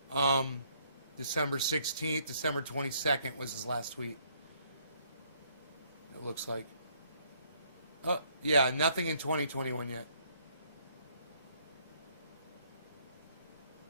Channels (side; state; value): both; inverted; correlation -0.67